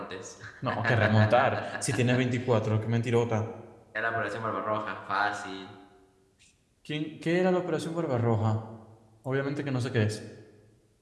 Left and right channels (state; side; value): identical; both; correlation 1.00